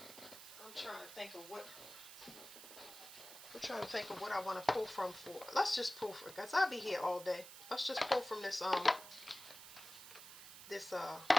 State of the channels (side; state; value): right; noise; hiss, 14 dB below the sound